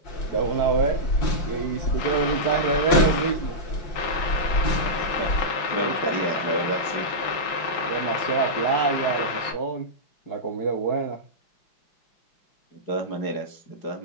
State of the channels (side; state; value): right; late; 6.0 ms